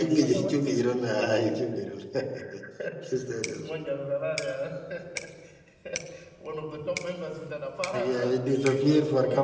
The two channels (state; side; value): identical; both; correlation 1.00